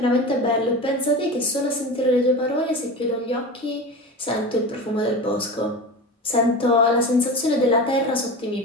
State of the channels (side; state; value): both; normal; correlation 0.28